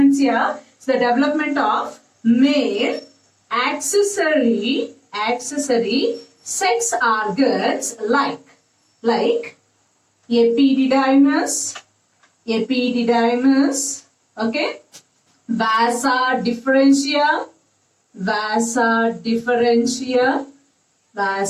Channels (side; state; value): both; identical; correlation 1.00